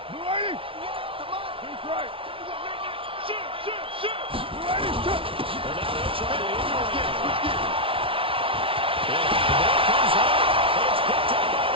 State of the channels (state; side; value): late; left; 0.26 ms